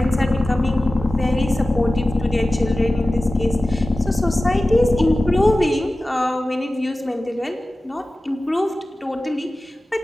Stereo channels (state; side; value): normal; both; correlation 0.96